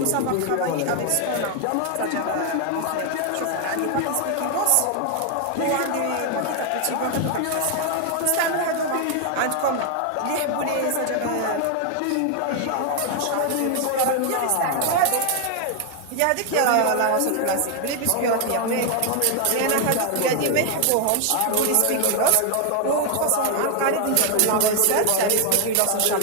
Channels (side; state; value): both; different; correlation 0.00